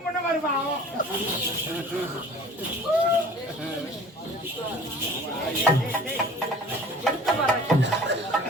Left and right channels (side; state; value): both; normal; correlation 0.45